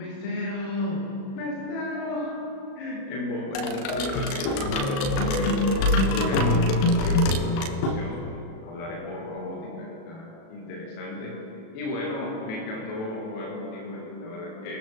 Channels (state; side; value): late; right; 36 ms